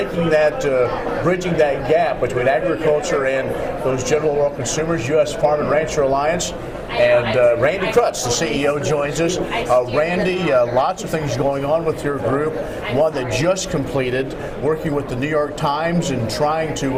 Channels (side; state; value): both; identical; correlation 1.00